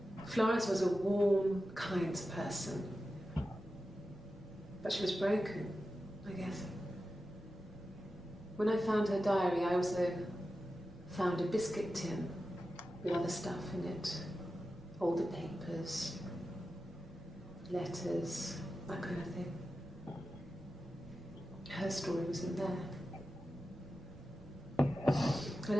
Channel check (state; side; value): noise; right; rumble, 19 dB below the sound